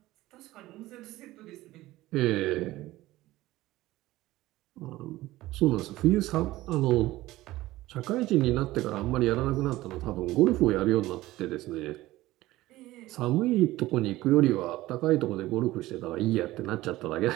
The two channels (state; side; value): quieter; left; 17.1 dB